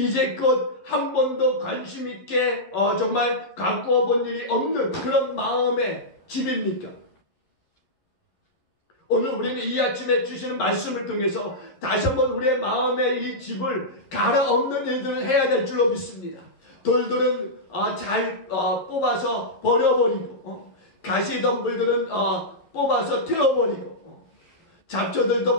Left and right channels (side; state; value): right; late; 11 ms